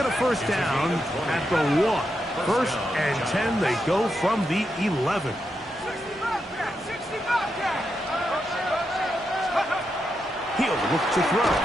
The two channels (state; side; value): normal; both; correlation 0.85